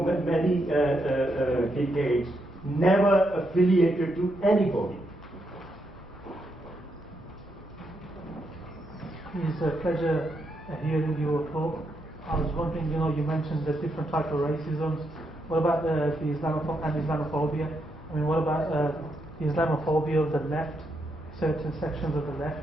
many decades, never affiliated to anybody. It's a pleasure hearing your talk. I was wondering, you mentioned the different types of racisms. What about the Islamophobia? I mean, what about the Islamophobia of the left? Certain sections of the left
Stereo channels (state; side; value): normal; both; correlation 0.80